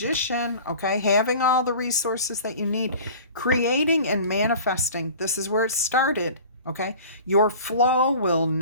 okay? Having all the resources that you need. Creating and manifesting. This is where it started, okay? Your flow will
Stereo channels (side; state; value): both; inverted; correlation -0.41